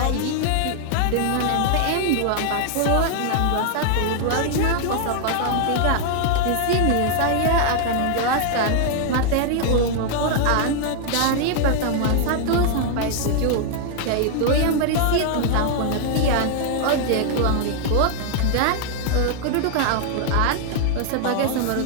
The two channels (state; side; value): different; both; correlation 0.00